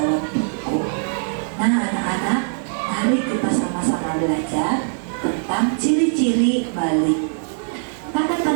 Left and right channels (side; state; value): left; silent; digital silence